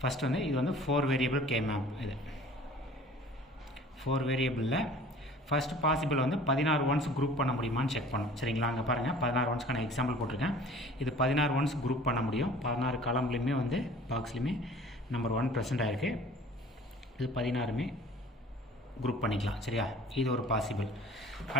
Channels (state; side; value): normal; both; correlation 0.48